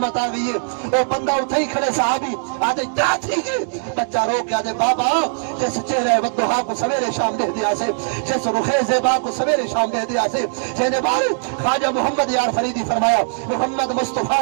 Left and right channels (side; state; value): left; silent; 64 dB below the other